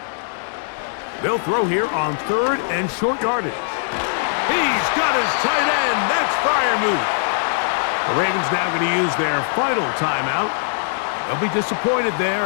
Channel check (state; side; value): silent; right; 61 dB below the other